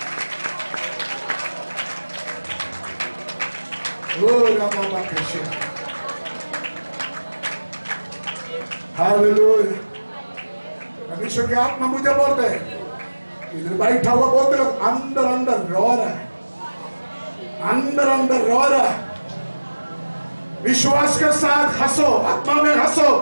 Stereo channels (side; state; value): both; inverted; correlation -1.00